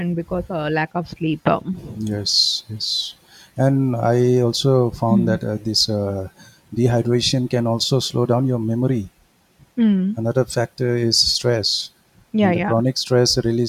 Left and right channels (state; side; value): identical; both; correlation 1.00